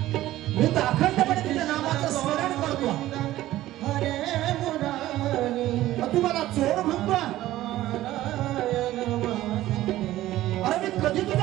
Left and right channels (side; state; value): left; quieter; 15.1 dB